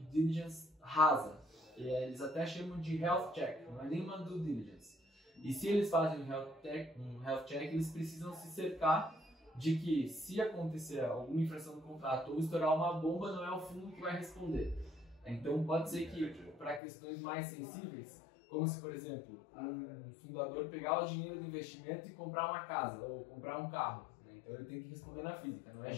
diligence rasa, eles até chamam de health check, não é nem uma due diligence. E se eles fazem um health check, eles precisam se cercar de que se acontecer alguma infração do contrato ou estourar uma bomba, não é o fundo que vai responder. Então pode ser que para questões mais sensíveis, como se, por exemplo, um fundador pegar o dinheiro do investimento e comprar uma casa ou comprar um carro, né? Então ele tem que responder na física, não é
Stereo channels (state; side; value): drops out; right; at 16.8 s